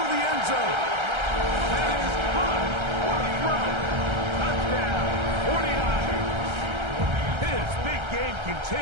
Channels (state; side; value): late; left; 1.3 ms